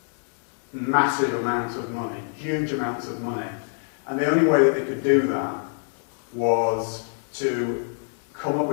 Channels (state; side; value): silent; right; digital silence